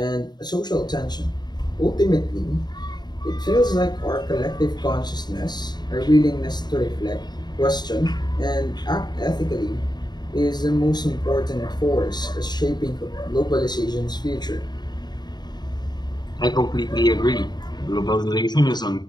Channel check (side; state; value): right; late; 0.20 ms